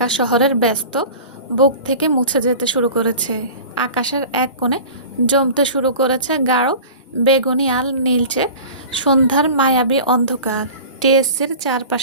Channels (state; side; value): inverted; both; correlation -0.38